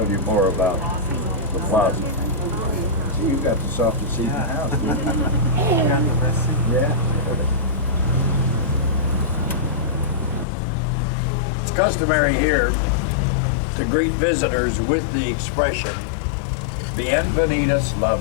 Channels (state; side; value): drops out; right; at 10.5 s